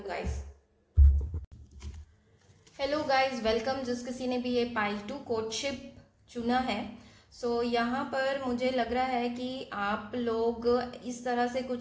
guys. Hello guys, welcome. जिस किसी ने भी ये पाइल 2 कोर्टशिप चुना है, सो यहाँ पर मुझे लग रहा है कि आप लोग इस तरह से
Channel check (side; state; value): both; identical; correlation 1.00